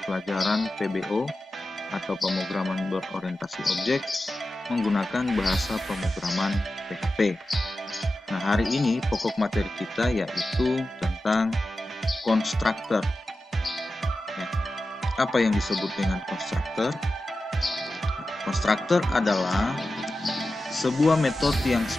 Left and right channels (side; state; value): both; normal; correlation 0.93